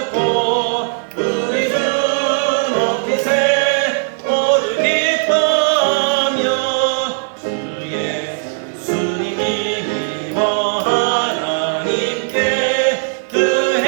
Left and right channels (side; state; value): left; silent; digital silence